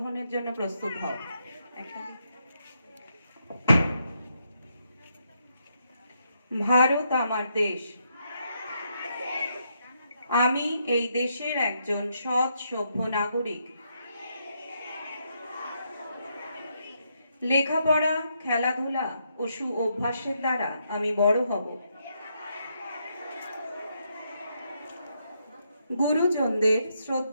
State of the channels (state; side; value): inverted; both; correlation -0.78